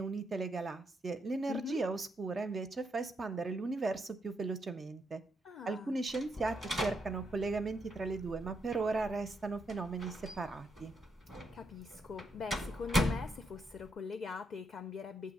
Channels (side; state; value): both; normal; correlation 0.79